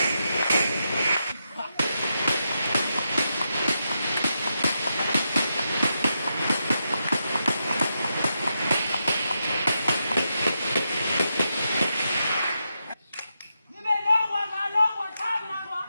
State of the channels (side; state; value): both; inverted; correlation -0.85